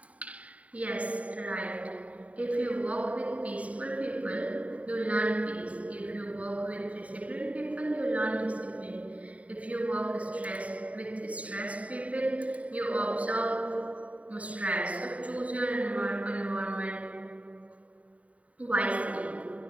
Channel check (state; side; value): late; left; 0.068 ms